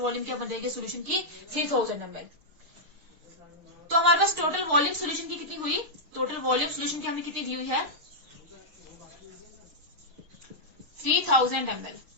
क्या बन जाएगी सोल्यूशन की 3000 ml। तो हमारे पास टोटल वॉल्यूम सोल्यूशन की कितनी हुई, टोटल वॉल्यूम सोल्यूशन की हमें कितनी दी हुई है 3000 ml,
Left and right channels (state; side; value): late; left; 6.3 ms